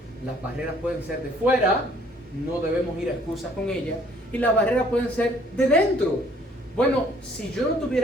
Las barreras pueden ser de fuera, no debemos ir a excusas con ellas, y las barreras pueden ser de dentro. Bueno, si yo no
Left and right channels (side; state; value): both; normal; correlation 0.60